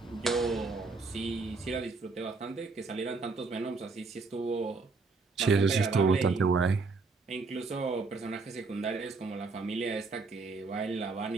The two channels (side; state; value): left; quieter; 4.1 dB